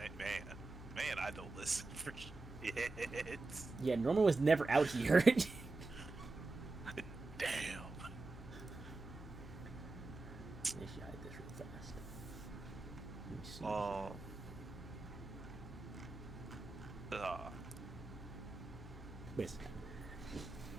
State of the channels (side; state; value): left; quieter; 3.4 dB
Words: I don't listen for shit. Yeah, Norman was never out here. Damn. I should hide this real fast. Let me see. Wait a second.